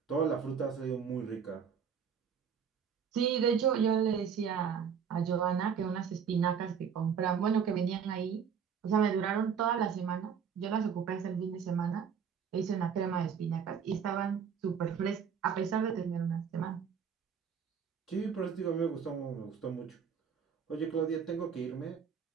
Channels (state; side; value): quieter; left; 7.1 dB